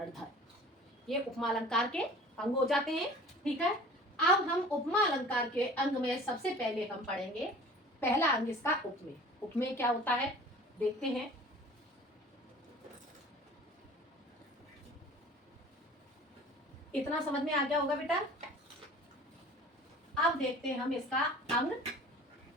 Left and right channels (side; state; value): both; normal; correlation 0.44